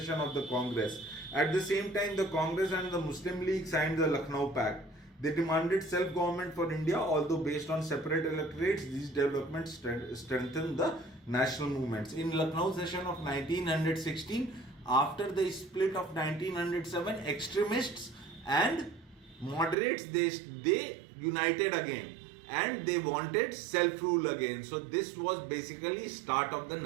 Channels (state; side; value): drops out; left; at 19.8 s